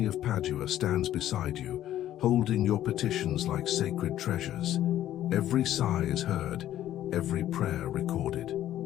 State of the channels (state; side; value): quieter; right; 12.5 dB